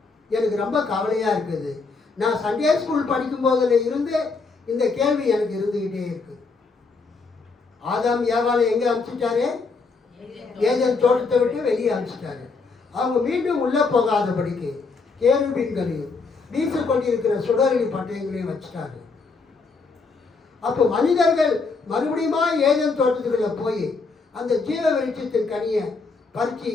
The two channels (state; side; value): quieter; right; 4.3 dB